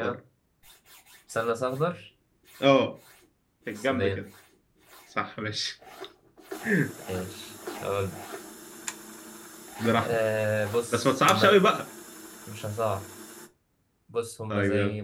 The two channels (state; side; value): identical; both; correlation 1.00